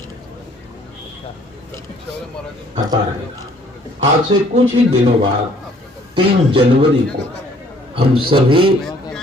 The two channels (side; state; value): both; normal; correlation 0.59